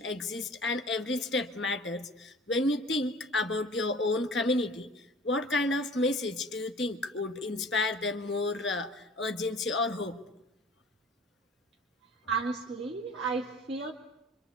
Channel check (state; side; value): normal; both; correlation 0.45